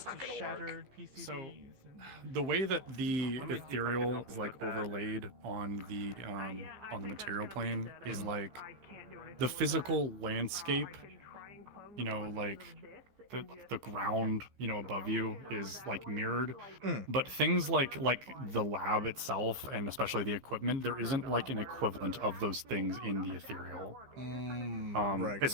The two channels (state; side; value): late; left; 15 ms